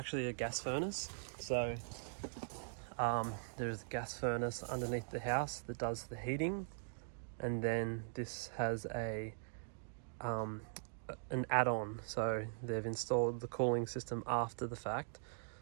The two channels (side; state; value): left; silent; digital silence